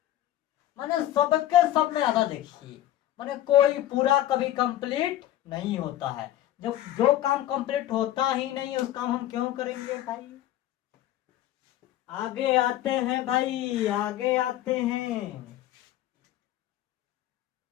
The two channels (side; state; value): right; quieter; 13.4 dB